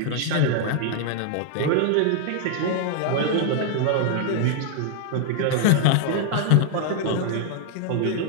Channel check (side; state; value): both; different; correlation 0.00